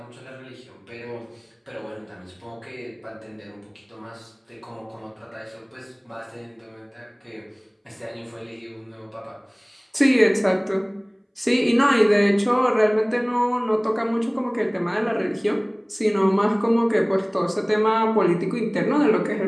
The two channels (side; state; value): both; identical; correlation 1.00